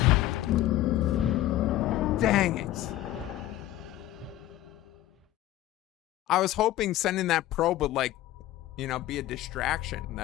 Dang it. I was hoping sending that probe would, like, you know, be a distraction,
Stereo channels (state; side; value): quieter; right; 14.4 dB